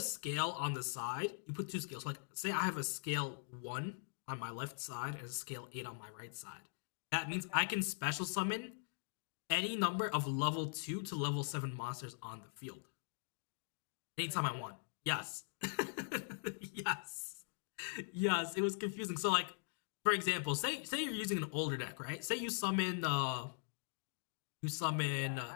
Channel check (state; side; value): silent; right; digital silence